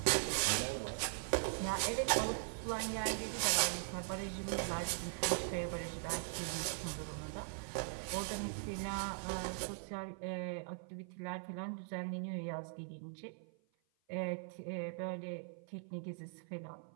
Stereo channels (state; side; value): silent; left; 51 dB below the other